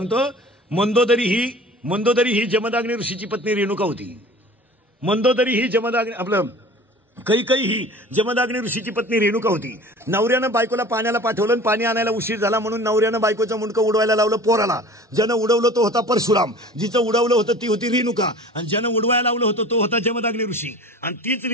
मंदोदरी ही जमदाग्नी ऋषीची पत्नी रेणुका होती. मंदोदरी ही जमदाग्नी आपलं कैकई ही जमदाग्नी ऋषीची पत्नी रेणुका होती. नवऱ्यानं बायकोला पाण्याला पाठवलं पाणी आणायला उशीर झाला म्हणून नवऱ्यानं बायकोचं मुंडकं उडवायला लावलं पोराला. ज्यानं उडवलं तो होता परशुराम. जिचं उडवलं होतं ती होती रेणुका आणि ज्यानं उडवायला लावलं होतं तो होता जमदाग्नी ऋषी. आणि तीच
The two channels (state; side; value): normal; both; correlation 0.42